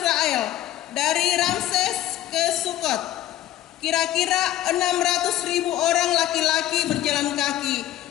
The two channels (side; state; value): right; quieter; 13.3 dB